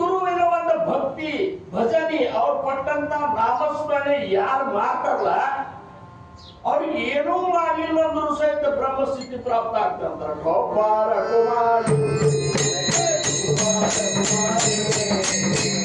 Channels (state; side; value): identical; both; correlation 1.00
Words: ಒಂದು ಭಕ್ತಿ ಭಜನಿ ಅವ್ರು ಕೊಟ್ಟಂತ ನಾಮಸ್ಮರಣೆ ಯಾರು ಮಾಡ್ತಾರಲ್ಲ ಅವ್ರಿಗೆ ಏನೂ ಮಾಡಲಿಲ್ಲ ಅಂದ್ರೂ ಸಹಿತ ಬ್ರಹ್ಮಸ್ಥಿತಿ ಪ್ರಾಪ್ತ ಆಗ್ತಂತಾರೆ. ಗೋಪಾಲ ಕುಮಾರಿ